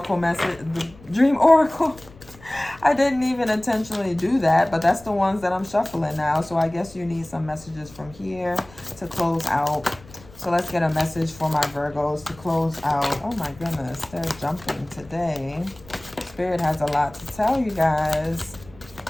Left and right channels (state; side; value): noise; left; rumble, 22 dB below the sound